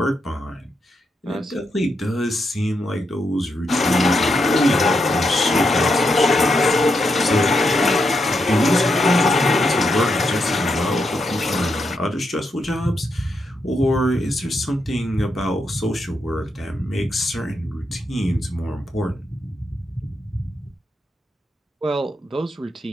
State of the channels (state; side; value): normal; both; correlation 0.82